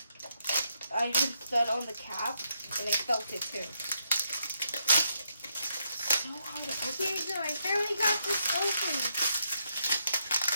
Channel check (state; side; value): inverted; both; correlation -0.78